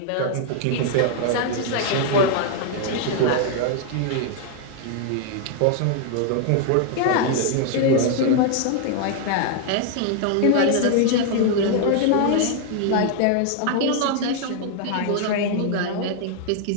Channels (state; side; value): different; both; correlation 0.00